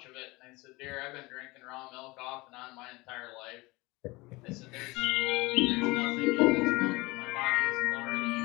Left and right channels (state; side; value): quieter; right; 22.8 dB